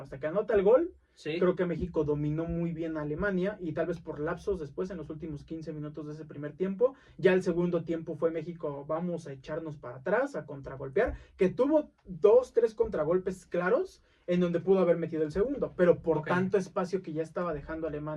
Hasta que anota el gol, sí. Creo que México dominó muy bien a Alemania, y tal vez por lapsos después, en los últimos 15 minutos de ese primer tiempo. Ya el segundo tiempo fue México, vamos a echarnos para atrás, a contragolpear, que tuvo 2-3 contragolpes claros, en donde pudo haber metido el segundo, pero por tanto espacio que ya estaba dejando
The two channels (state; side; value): identical; both; correlation 1.00